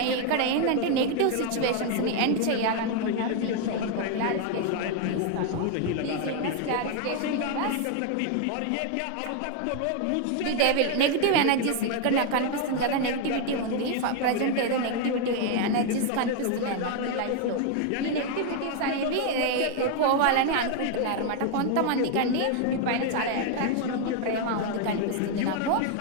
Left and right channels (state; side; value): different; both; correlation 0.01